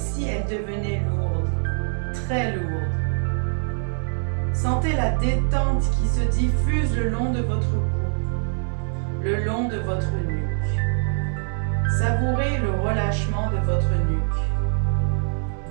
elles devenaient lourdes, très lourdes. Sentez la détente qui se diffuse le long de votre cou, le long de votre nuque. Savourez le relâchement de votre nuque.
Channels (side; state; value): left; silent; 63 dB below the other